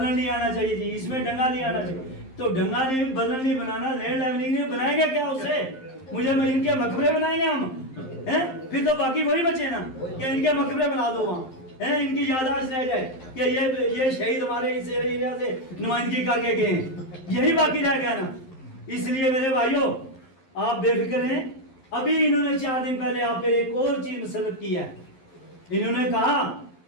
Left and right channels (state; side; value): late; right; 11 ms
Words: नहीं आना चाहिए जी, इसमें डंगा नहीं आना चाहिए। तो डंगा नहीं, बल्लन नहीं बनाना, लैंड लेवलिंग नहीं बनाएंगे क्या उससे? मुझे इनके मकबरे बनाएंगे हम हैं? फिर तो बाकी वही बचे ना कि इनके मकबरे बना दो वहाँ हैं, इनकी याददाश्त रह जाए कि ये शहीद हमारे इस एरिया से नुमाइंदगी करके गए हैं, यही बाकी रह गया ना। इसलिए मेरे भाइयों, आप बेफिक्र हैं। अभी इन्होंने 4 दिन पहले आप पे एक और चीज मुसल्लत की है। इन्होंने कहा